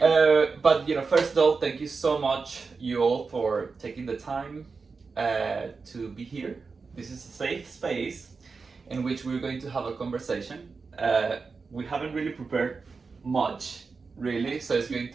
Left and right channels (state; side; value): quieter; left; 4.6 dB